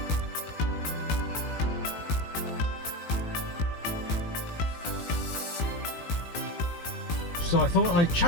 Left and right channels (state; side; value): late; right; 18 ms